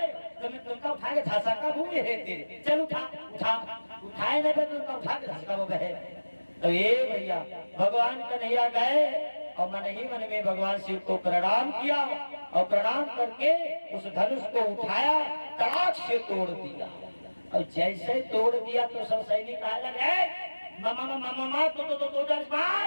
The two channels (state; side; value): inverted; both; correlation -1.00